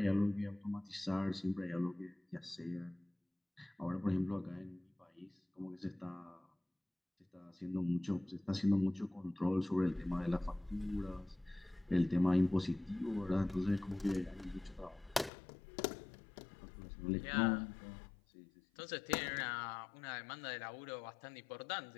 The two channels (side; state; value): right; drops out; at 15.3 s